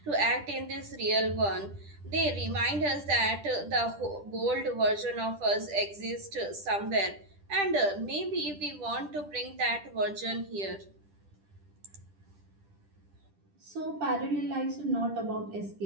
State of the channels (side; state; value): left; late; 10 ms